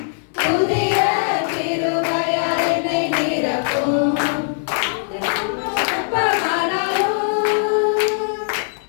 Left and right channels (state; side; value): silent; right; digital silence